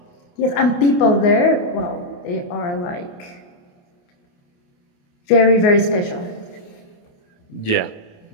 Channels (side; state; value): right; late; 28 ms